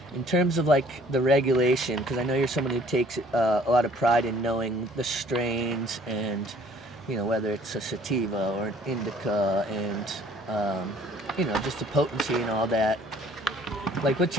In terms of like the regulation, because I know you're someone who takes a lot of pride in knowing the strains and, you know, whether it's a sativa or an indica and, you know, just the potency and all that. Like, what's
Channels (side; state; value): both; normal; correlation 0.57